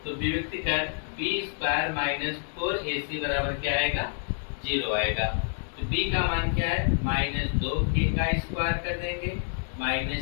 तो विविक्त कर बी स्क्वायर माइनस 4ac बराबर क्या आएगा 0 आएगा। तो b का मान क्या है माइनस 2k का स्क्वायर कर देंगे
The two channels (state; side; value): silent; right; digital silence